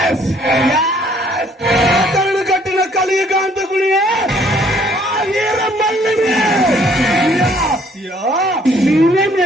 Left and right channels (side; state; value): both; normal; correlation 0.62